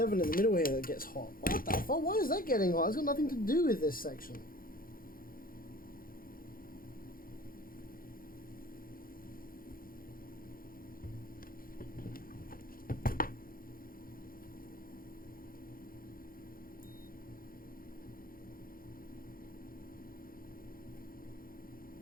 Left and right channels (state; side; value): late; right; 0.42 ms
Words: in the middle here that gets hot. What the fuck? Why is that getting hot? It's got nothing to do with this section.